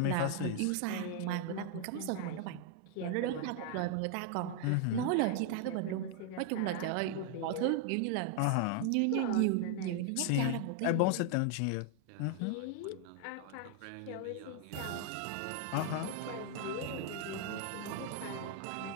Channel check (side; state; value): both; different; correlation 0.00